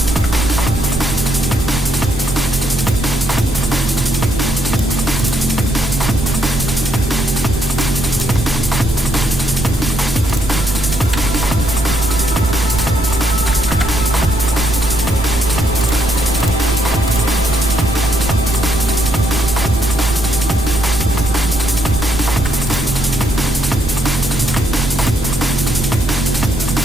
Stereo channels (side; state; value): right; noise; rumble, 5 dB below the sound